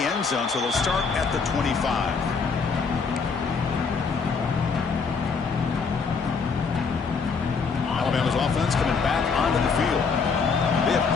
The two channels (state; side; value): quieter; right; 5.2 dB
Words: end zone, so they'll start at the 25. Alabama's offense coming back onto the field. They have